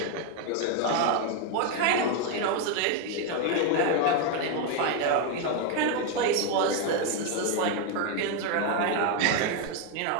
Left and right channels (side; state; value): both; different; correlation 0.01